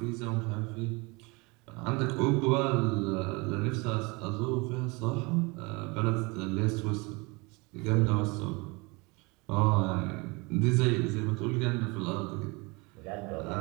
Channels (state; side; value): quieter; left; 27.1 dB